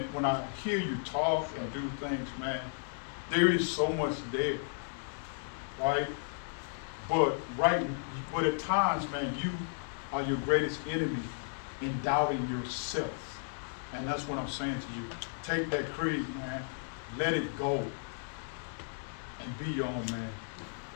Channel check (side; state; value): right; silent; digital silence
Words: when I hear you talk and do things, man, there is so much there, right? But at times, man, you are your greatest enemy in doubting yourself. And that's what I'm saying to you. Take that creed, man, let it go, and be your own man.